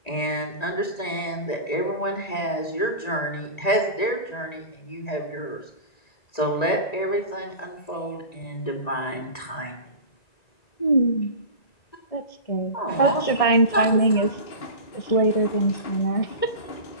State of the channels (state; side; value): late; right; 1.9 ms